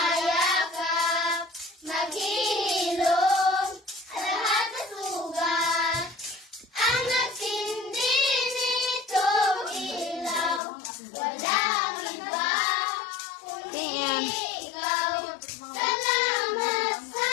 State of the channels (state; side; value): drops out; right; at 10.6 s